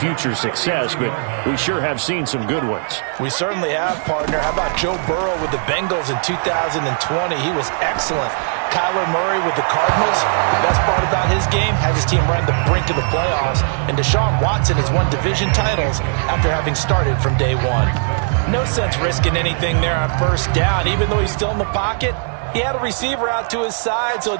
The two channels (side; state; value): left; silent; 65 dB below the other